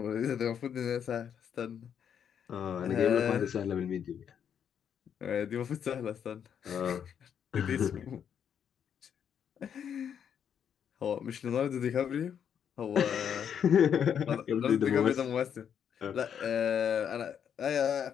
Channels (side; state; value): right; quieter; 8.3 dB